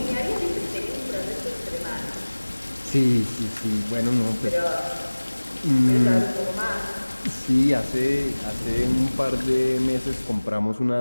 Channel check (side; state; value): both; inverted; correlation -1.00